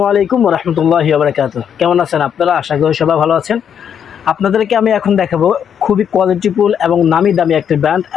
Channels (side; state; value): right; quieter; 8.3 dB